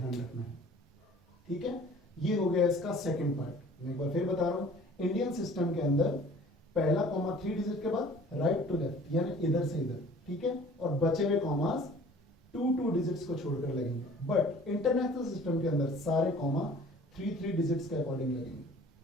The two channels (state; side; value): normal; both; correlation 0.49